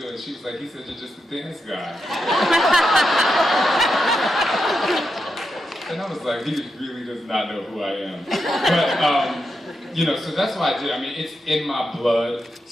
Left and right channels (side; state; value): both; normal; correlation 0.86